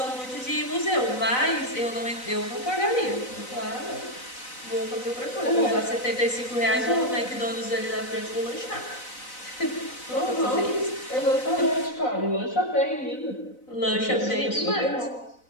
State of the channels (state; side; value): late; right; 4.0 ms